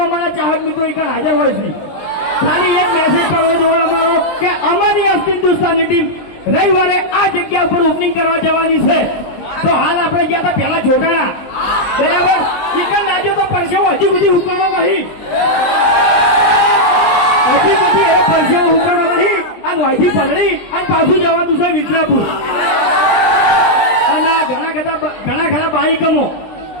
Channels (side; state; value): right; late; 20 ms